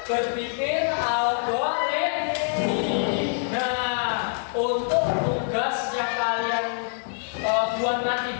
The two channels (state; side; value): silent; right; 62 dB below the other